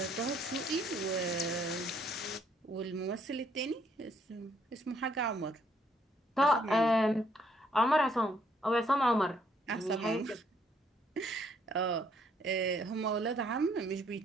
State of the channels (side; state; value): both; normal; correlation 0.68